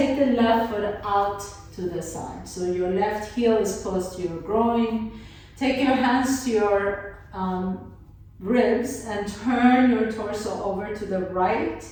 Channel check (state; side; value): identical; both; correlation 1.00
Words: the left foot out to the side. So your left heel is close to your groin. Take your hands to your ribs and turn your torso over to the right.